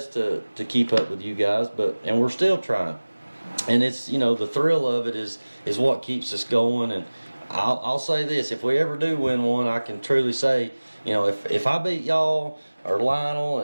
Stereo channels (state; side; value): inverted; both; correlation -1.00